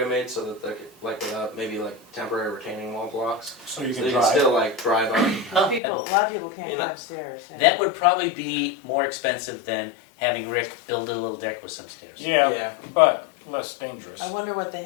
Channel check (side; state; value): right; drops out; at 5.8 s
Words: made so that they could, like, maybe like temporary retaining wall blocks? So you So can they can drive. still like drive up. Oh, People, a lot of people can't You go know, upstairs. That would probably be more expensive than having Rick build a little deck with some stairs. Yeah, but less dangerous. I wonder what the